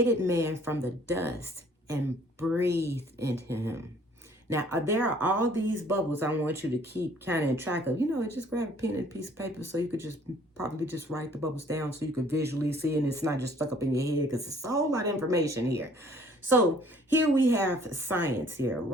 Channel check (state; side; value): normal; both; correlation 0.57